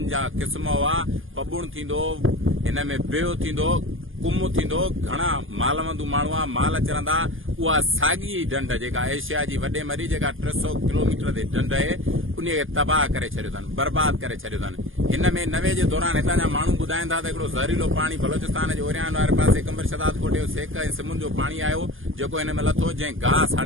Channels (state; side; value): late; left; 0.59 ms